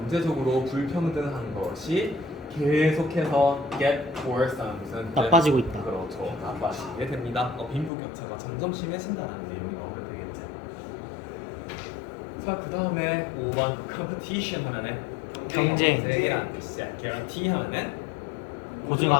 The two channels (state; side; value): drops out; right; at 7.9 s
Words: 불평등한 것이 계속해서 get worse 하는 무슨 나빠지고 있다. 그렇죠. 나빠지게 됩니다. 빈부격차가 점점 심해진다는 내용이 나오면 되겠지. 자, 그 다음에 5번 competition 하면은 경쟁이라는 뜻이야. guarantee 하면은